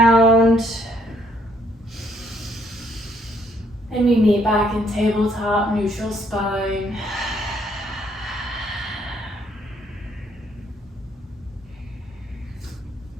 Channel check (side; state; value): both; normal; correlation 0.68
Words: And we meet back in tabletop, neutral spine.